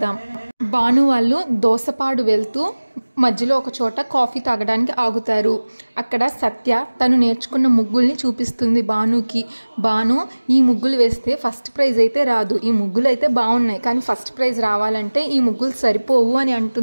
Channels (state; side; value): inverted; both; correlation -1.00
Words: భాను వాళ్ళు దోసపాడు వెళ్తూ మధ్యలో ఒక చోట కాఫీ తాగడానికి ఆగుతారు. అక్కడ సత్య తను నేర్చుకున్న ముగ్గుల్ని చూపిస్తుంది భానుకి. భాను ఈ ముగ్గులు వేస్తే ఫస్ట్ ప్రైజ్ అయితే రాదు, ఈ ముగ్గులు అయితే బాగున్నాయి కానీ ఫస్ట్ ప్రైజ్ రావాలంటే ఈ ముగ్గులు సరిపోవు అని